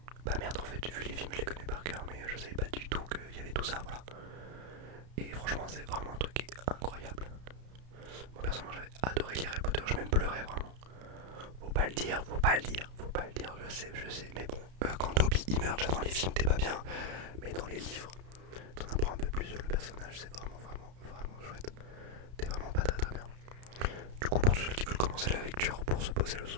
merde, en fait, j'ai vu les films, je les connais par cœur, mais je savais pas du tout qu'il y avait tout ça, voilà. Et franchement, c'est vraiment un truc qui est incroyable. Moi, personnellement, j'avais adoré lire Harry Potter, je même pleurais vraiment. Faut pas le dire, je sais, mais bon, quand Toby il meurt déjà dans les films, t'es pas bien, mais dans les livres, t'en apprends un peu plus sur le personnage, c'est vraiment chouette. T'es vraiment pas très bien. Du coup, pour tous ceux qui veulent commencer la lecture pour se poser le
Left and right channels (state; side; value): late; left; 32 ms